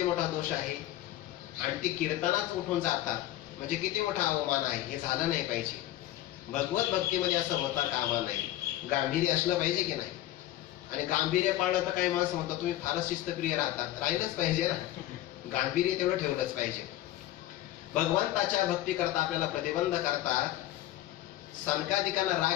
मोठा दोष आहे. आणि ते कीर्तनात उठून जातात, म्हणजे किती मोठा अवमान आहे. हे झालं नाही पाहिजे. भगवत भक्तीमध्ये असं होता कामा नाही. गांभीर्य असलं पाहिजे की नाही. आणि गांभीर्य पाळलं तर काही माणसं म्हणतात तुम्ही फारच शिस्तप्रिय राहतात. राहिलंच पाहिजे ना, गांभीर्य तेवढं ठेवलंच पाहिजे. भगवंताच्या भक्ती करता आपल्याला प्रतिबंध करतात. सनकादिकांना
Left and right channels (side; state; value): right; quieter; 14.4 dB